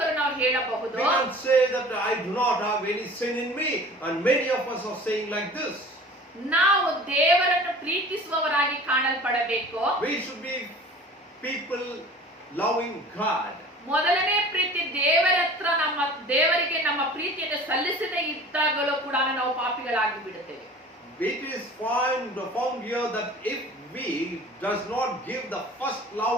ನಾವು ಹೇಳಬಹುದು. We can say that I do not have any sin in me, and many of us are saying like this. ನಾವು ದೇವರನ್ನು ಪ್ರೀತಿಸುವವರಾಗಿ ಕಾಣಲ್ಪಡಬೇಕು. We should be people loving God. ಮೊದಲನೇ ಪ್ರೀತಿ ದೇವರ ಹತ್ರ ದೇವರಿಗೆ ನಮ್ಮ ಪ್ರೀತಿಯನ್ನು ಸಲ್ಲಿಸದೇ ಇದ್ದಾಗಲೂ ಕೂಡ ನಾವು ಪಾಪಿಗಳಾಗಿ ಬಿಡುತ್ತೇವೆ. It is found here that if we does not give the first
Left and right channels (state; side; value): normal; both; correlation 0.43